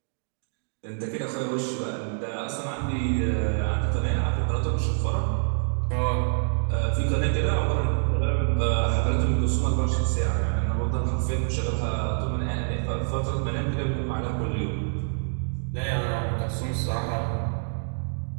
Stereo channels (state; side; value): silent; left; digital silence